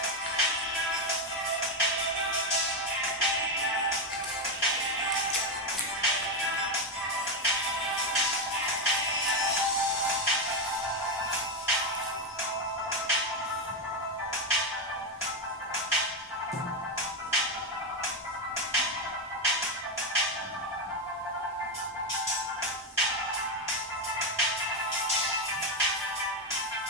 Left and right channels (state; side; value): normal; both; correlation 0.08